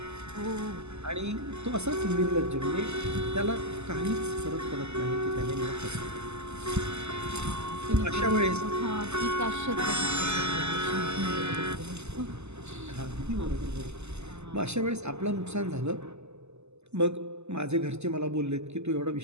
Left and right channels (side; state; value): left; late; 0.81 ms